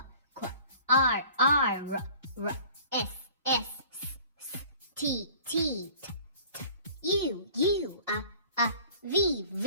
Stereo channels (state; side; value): inverted; both; correlation -0.48